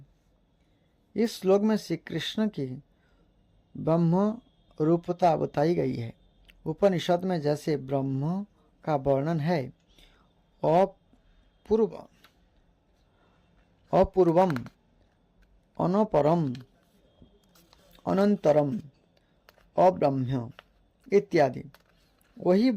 इस श्लोक में श्री कृष्ण की ब्रह्म रूपता बताई गई है। उपनिषद में जैसे ब्रह्म का वर्णन है, अपूर्वम, अनपरम, अनंतरम, अब्रह्म इत्यादि, वही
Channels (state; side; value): identical; both; correlation 1.00